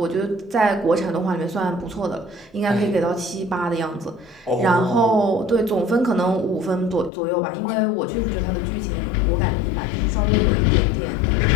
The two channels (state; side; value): drops out; right; at 7.1 s